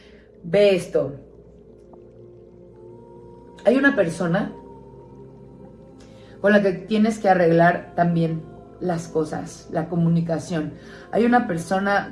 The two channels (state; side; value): identical; both; correlation 1.00